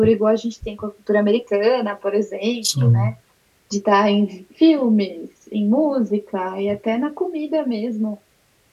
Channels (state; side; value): identical; both; correlation 1.00